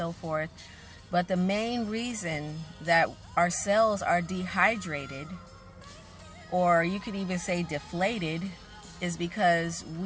forth. But the main reason that our cells are dehydrated, or you could even say deflated, is because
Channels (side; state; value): both; identical; correlation 1.00